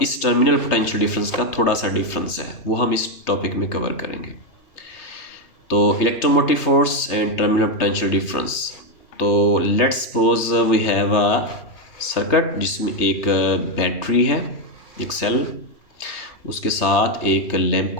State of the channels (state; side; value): late; right; 3.2 ms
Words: इस टर्मिनल पोटेंशियल डिफरेंस का थोड़ा सा डिफरेंस है, वो हम इस टॉपिक में कवर करेंगे। तो electromotive force and terminal potential difference. तो let's suppose we have a circuit जिसमें एक बैटरी है, एक सेल, उसके साथ एक लैंप